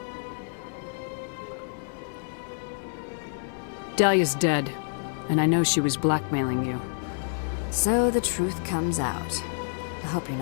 Dahlia's dead, and I know she was blackmailing you. So the truth comes out. I hope you're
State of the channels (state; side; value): silent; right; digital silence